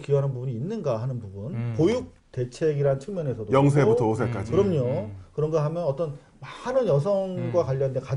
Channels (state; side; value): identical; both; correlation 1.00